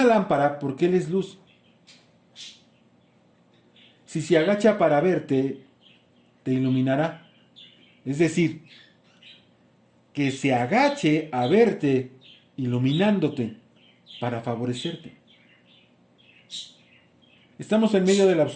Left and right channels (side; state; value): both; identical; correlation 1.00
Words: lámpara, porque Él es luz. Si se agacha para verte, te iluminará. Es decir, que se agache a verte, iluminándote, para favorecerte. Estamos en medio de la